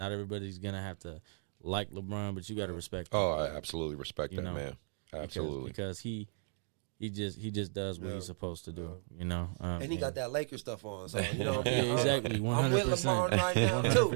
everybody's gonna have to like LeBron, but you got to respect him. Oh, I absolutely respect that, man. Absolutely, because he just does what he's supposed to do, you know. And he got that Lakers stuff on, so you know. Yeah, exactly, 100%. I'm with LeBron right now too.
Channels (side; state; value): left; silent; 54 dB below the other